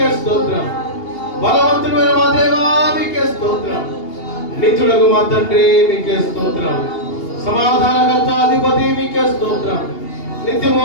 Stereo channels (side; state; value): right; late; 2.8 ms